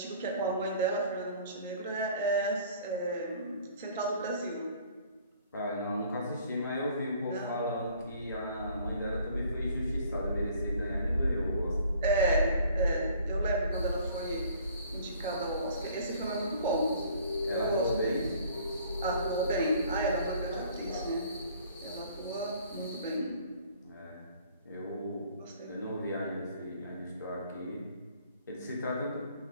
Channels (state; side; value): inverted; both; correlation -0.55